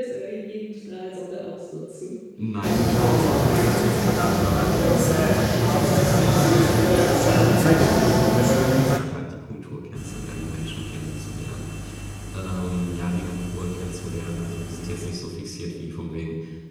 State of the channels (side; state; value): both; identical; correlation 1.00